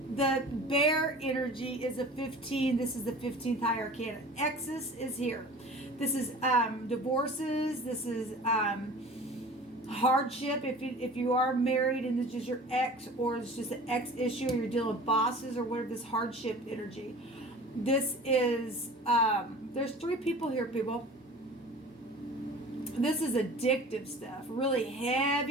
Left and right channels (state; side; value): normal; both; correlation 0.41